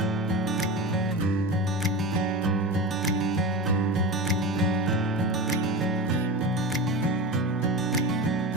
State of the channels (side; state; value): both; normal; correlation 0.24